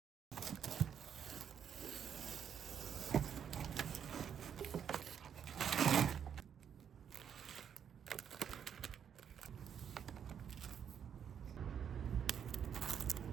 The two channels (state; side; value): quieter; left; 8.2 dB